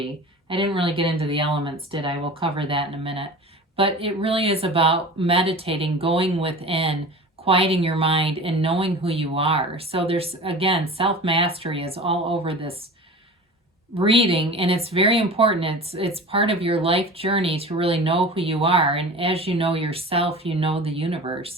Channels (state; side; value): normal; both; correlation 0.36